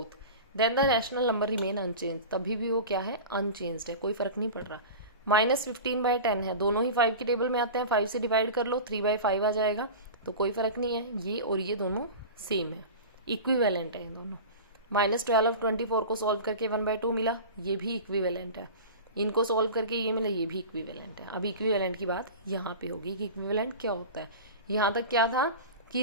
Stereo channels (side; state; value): both; inverted; correlation -0.32